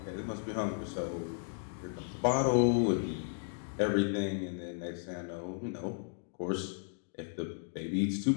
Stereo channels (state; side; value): silent; right; digital silence